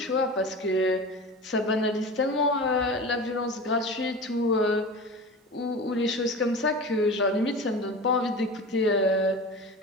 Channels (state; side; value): normal; both; correlation 0.32